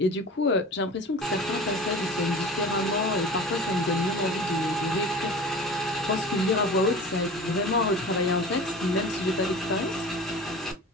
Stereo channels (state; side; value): normal; both; correlation 0.37